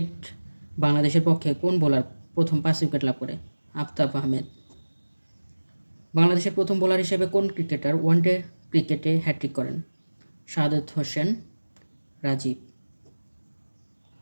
বাংলাদেশের পক্ষে কোন বোলার প্রথম 5 উইকেট লাভ করে? আফতাব আহমেদ। বাংলাদেশের প্রথম বোলার হিসেবে কোন ক্রিকেটার ওয়ানডে ক্রিকেটে হ্যাটট্রিক করেন? শাহাদাত হোসেন রাজীব।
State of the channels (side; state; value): both; inverted; correlation -1.00